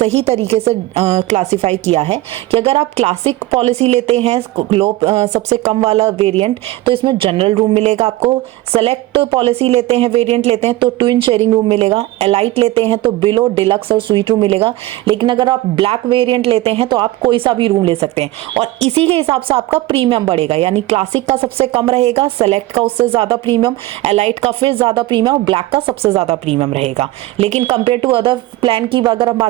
तरीके से क्लासीफाई किया है कि अगर आप क्लासिक पॉलिसी लेते हैं, लो सबसे कम वाला वेरिएंट, तो इसमें जनरल रूम मिलेगा आपको। सेलेक्ट पॉलिसी लेते हैं, वेरिएंट लेते हैं तो ट्विन शेयरिंग रूम मिलेगा। एलाइट लेते हैं तो बिलो, डिलक्स और स्वीट रूम मिलेगा। लेकिन अगर आप ब्लैक वेरिएंट लेते हैं तो आप कोई सा भी रूम ले सकते हैं, और इसी के हिसाब से आपका प्रीमियम बढ़ेगा। यानी क्लासिक का सबसे कम रहेगा, सेलेक्ट का उससे ज्यादा प्रीमियम, एलाइट का फिर ज्यादा प्रीमियम और ब्लैक का सबसे ज्यादा प्रीमियम रहेगा। लेकिन कंपेयर टू अदर प्लान की अगर हम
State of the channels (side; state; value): left; quieter; 17.0 dB